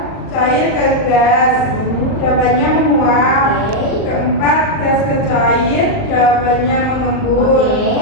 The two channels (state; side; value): late; right; 39 ms